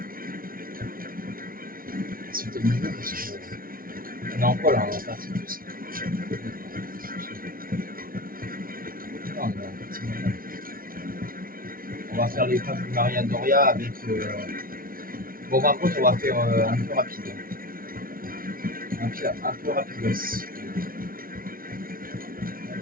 Sauter le niveau parce que. On est en quoi là? On est en partie plus. Non, on est en partie normale. On va faire les femmes du Maria Doria avec. Bon, par contre, on va faire un peu rapide. Un peu rapide aussi.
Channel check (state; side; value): late; left; 0.42 ms